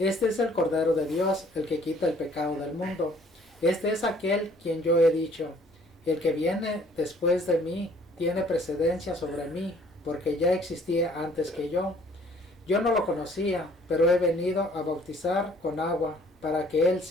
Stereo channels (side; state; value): both; normal; correlation 0.58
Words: es el Cordero de Dios, el que quita el pecado del mundo. Este es aquel quien yo he dicho: el que viene después de mí tiene precedencia sobre mí, porque ya existía antes que yo. Yo no lo conocía, pero he venido a bautizar con agua, para que él